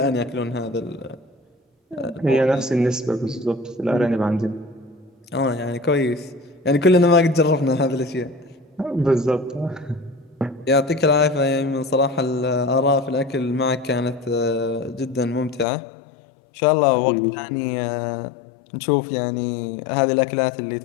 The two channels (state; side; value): drops out; right; at 15.7 s